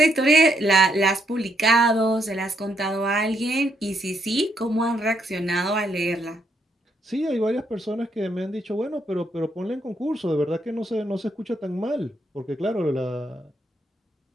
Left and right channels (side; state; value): both; normal; correlation 0.74